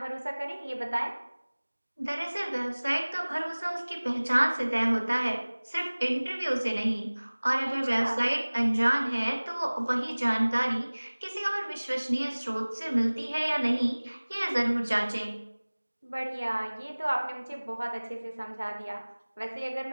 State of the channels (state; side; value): inverted; both; correlation -1.00